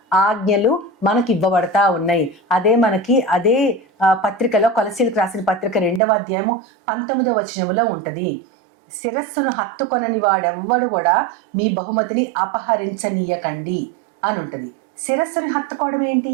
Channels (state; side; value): drops out; left; at 6.0 s